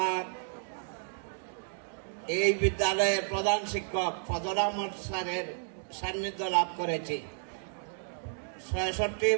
এই বিদ্যালয়ের প্রধান শিক্ষক ফজল আহমদ স্যারের সান্নিধ্য লাভ করেছি।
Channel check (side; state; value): left; silent; digital silence